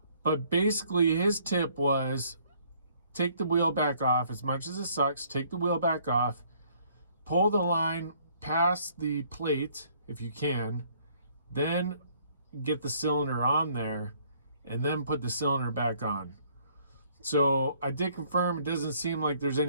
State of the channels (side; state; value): both; inverted; correlation -0.62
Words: But basically, his tip was, take the wheel back off. As much as it sucks, take the wheel back off, pull the line past the plate if you can, then get the cylinder on there, and then put the cylinder back on. So I did confirm it doesn't seem like there's